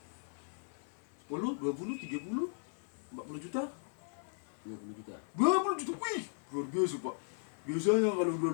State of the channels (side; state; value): right; silent; 53 dB below the other